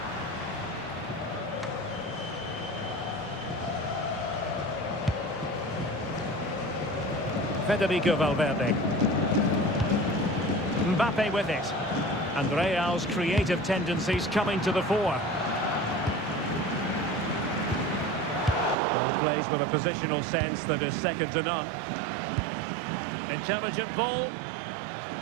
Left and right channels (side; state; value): left; drops out; at 18.8 s